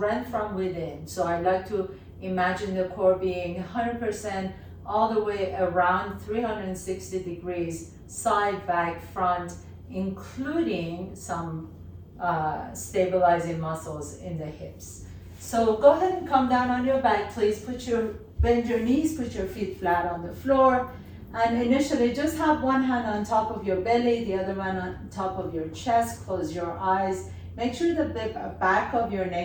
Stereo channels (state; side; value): identical; both; correlation 1.00